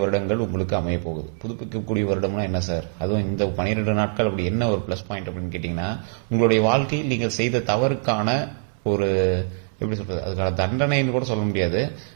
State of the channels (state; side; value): silent; left; 63 dB below the other